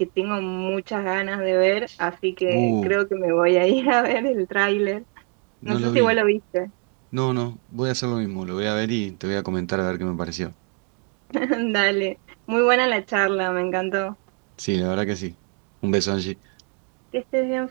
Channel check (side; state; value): left; quieter; 39.1 dB